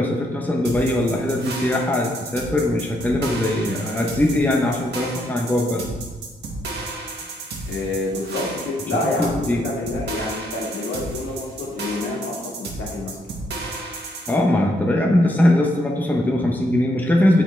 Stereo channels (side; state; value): both; normal; correlation 0.76